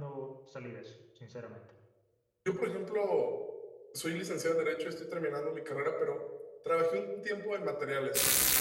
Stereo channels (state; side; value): identical; both; correlation 1.00